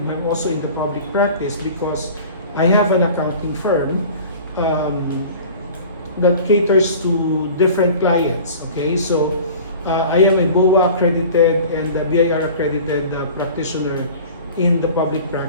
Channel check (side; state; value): both; inverted; correlation -0.41